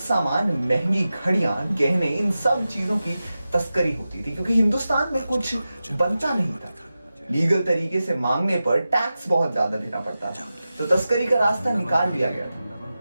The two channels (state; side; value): inverted; both; correlation -0.93